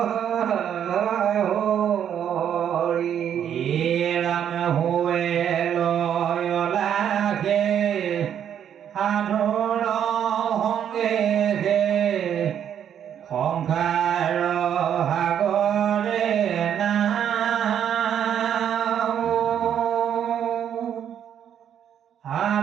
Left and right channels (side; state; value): left; quieter; 9.3 dB